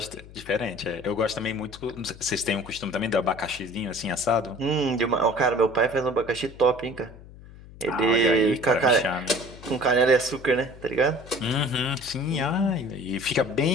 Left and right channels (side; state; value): left; noise; hum, 18 dB below the sound